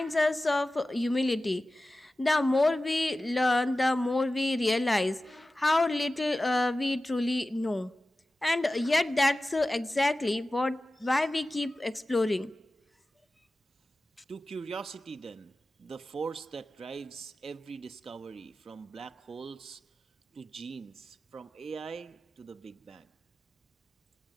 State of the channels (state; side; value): normal; both; correlation 0.95